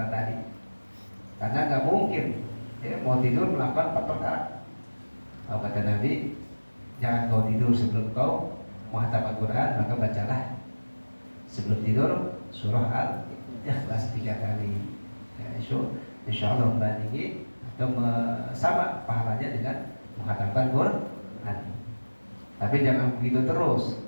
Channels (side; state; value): both; inverted; correlation -1.00